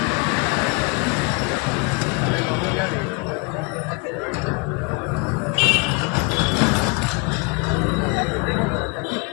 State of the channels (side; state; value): right; quieter; 31.4 dB